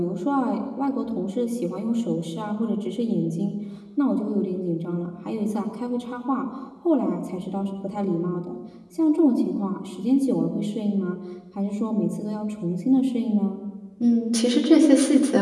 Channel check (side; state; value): both; identical; correlation 1.00